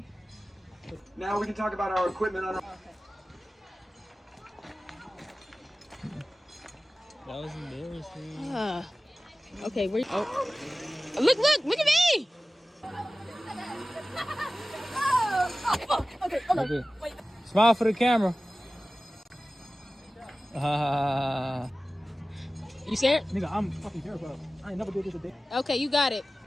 Now we can talk about our equipment on our... That was embarrassing. Okay, where? Oh, look at me! Okay, hold on. Wait. Smile for the camera. You scared? Nigga, I'm fucking terrified. I ain't never did this a day. Okay, you got it.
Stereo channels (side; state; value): both; normal; correlation 0.97